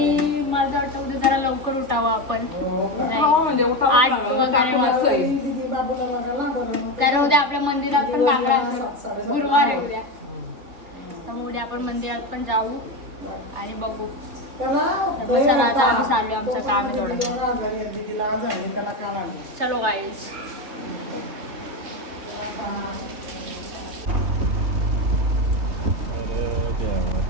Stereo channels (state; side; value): late; left; 3.3 ms